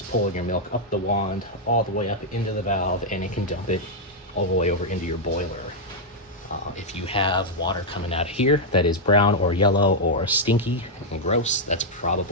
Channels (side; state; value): both; normal; correlation -0.04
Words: pulling your milk up the wand, all the way up into the valve, and it can dump it all the way over into your boiler. If you have water coming out of here that is brown or yellow or stinky and gross, that's